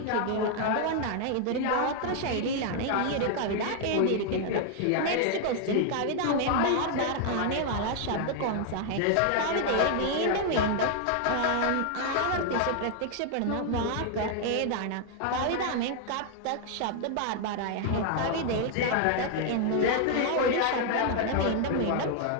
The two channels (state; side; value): different; both; correlation 0.00